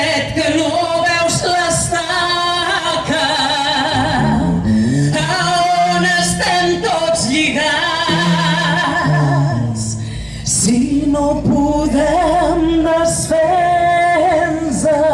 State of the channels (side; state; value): both; identical; correlation 1.00